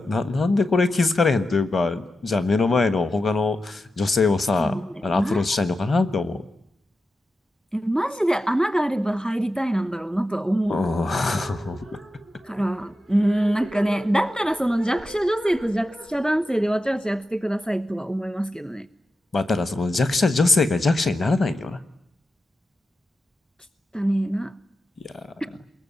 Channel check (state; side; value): normal; both; correlation 0.91